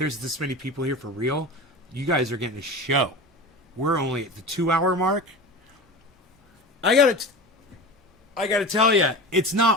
this many people here for real, you guys are getting a show. We're only at the 2-hour mark. I gotta tell you, it's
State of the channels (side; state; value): both; normal; correlation 0.30